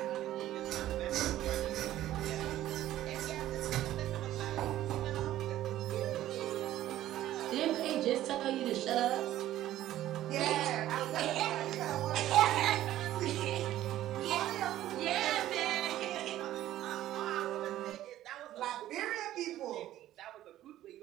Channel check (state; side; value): quieter; left; 13.6 dB